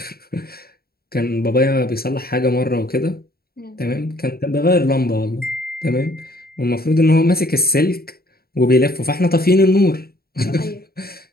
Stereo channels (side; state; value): right; late; 0.45 ms